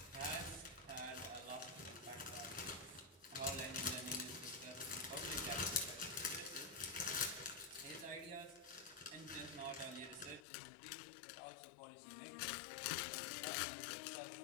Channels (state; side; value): drops out; right; at 10.5 s